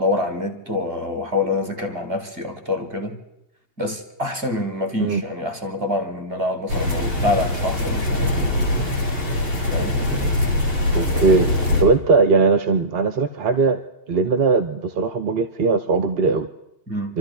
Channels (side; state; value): left; late; 2.8 ms